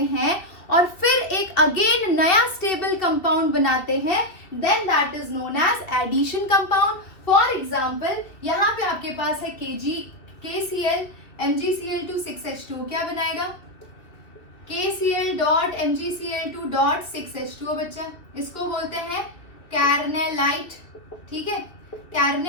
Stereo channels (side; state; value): right; late; 2.4 ms